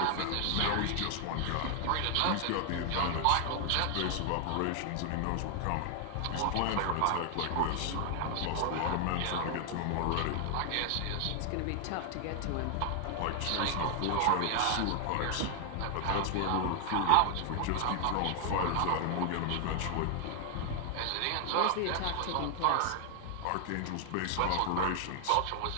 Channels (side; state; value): both; different; correlation 0.00